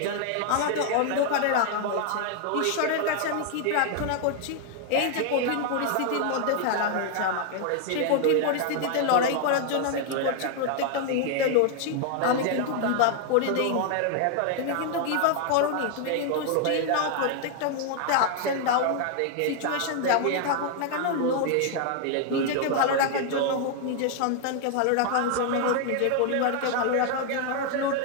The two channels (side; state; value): both; different; correlation 0.00